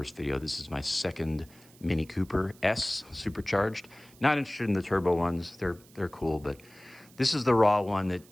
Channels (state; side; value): noise; right; hiss, 26 dB below the sound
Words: video, this is my second Mini Cooper S supercharged. Not interested in the turbo ones. They're cool, but this is the raw one that,